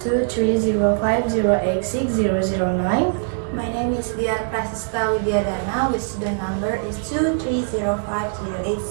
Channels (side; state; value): left; silent; 64 dB below the other